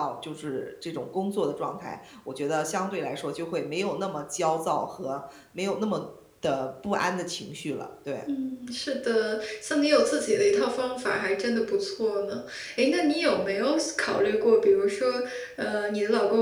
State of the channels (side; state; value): both; identical; correlation 1.00